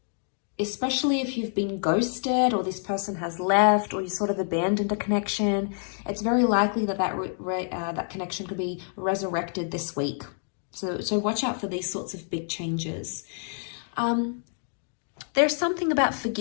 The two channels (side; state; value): right; silent; 59 dB below the other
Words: especially if you've been ghosted or this person has left or you sort of abandoned a connection, it's very likely that that connection could be resurrected this week. So watch out for these sorts of big changes. There's something about